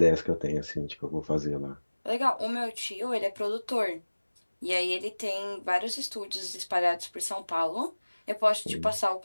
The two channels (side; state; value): both; inverted; correlation -1.00